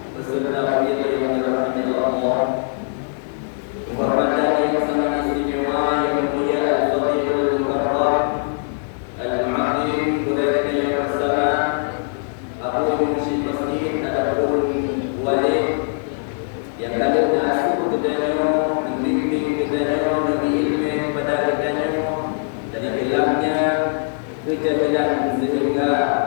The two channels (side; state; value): right; silent; digital silence